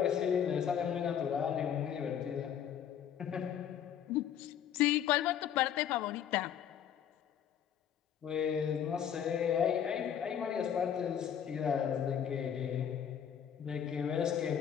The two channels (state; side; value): quieter; right; 9.0 dB